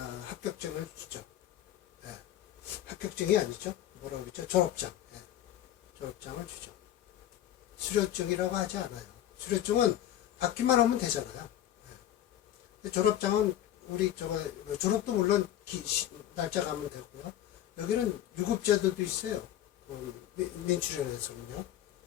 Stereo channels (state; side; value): quieter; right; 11.9 dB